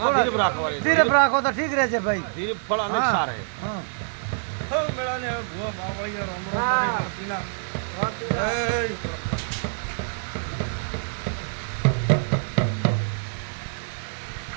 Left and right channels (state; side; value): silent; left; digital silence